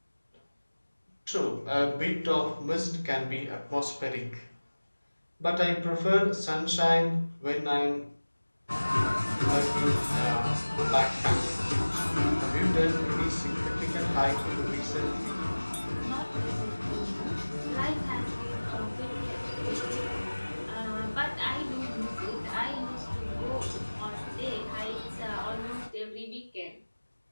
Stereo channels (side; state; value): both; inverted; correlation -1.00